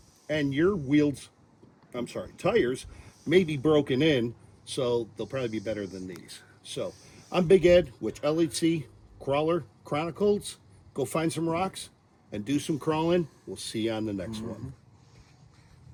and your tires may be broken in, so they'll probably be better than these. So I'm Big Ed with LHC Crawler Chronicles. Go find some rocks and do some crawling. We'll see you on the next one.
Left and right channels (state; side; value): identical; both; correlation 1.00